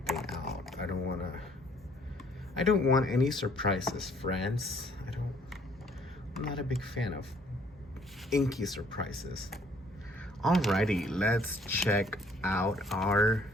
out. I don't want any surprises, friends. I'm not a big fan of inky surprises. Alrighty, let's check out our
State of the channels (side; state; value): both; normal; correlation 0.61